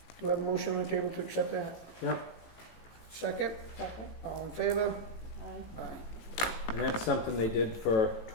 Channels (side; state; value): right; late; 18 ms